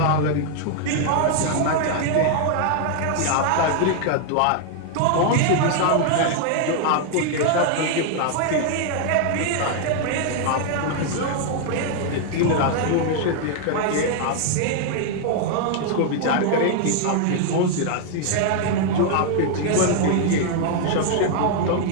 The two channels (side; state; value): both; different; correlation 0.00